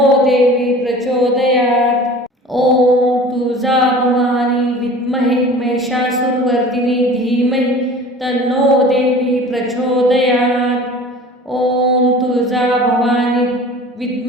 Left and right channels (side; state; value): both; normal; correlation 0.42